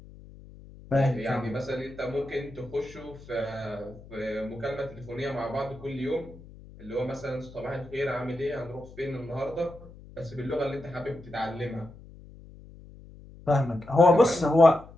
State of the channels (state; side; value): noise; left; hum, 19 dB below the sound